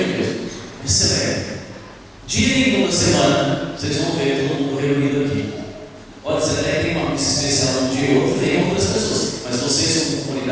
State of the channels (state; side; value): identical; both; correlation 1.00